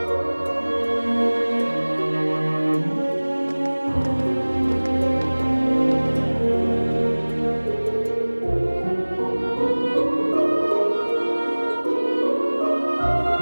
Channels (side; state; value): both; inverted; correlation -1.00